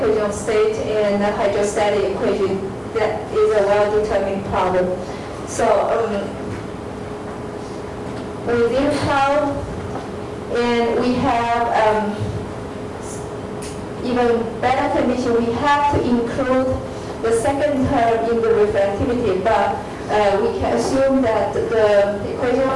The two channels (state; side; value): identical; both; correlation 1.00